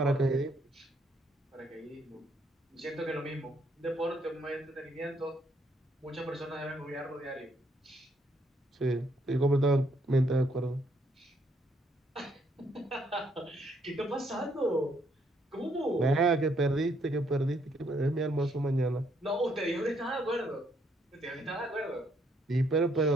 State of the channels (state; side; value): normal; both; correlation 0.71